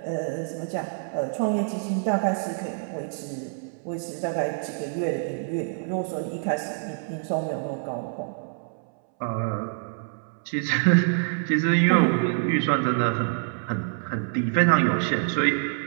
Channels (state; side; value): silent; left; 61 dB below the other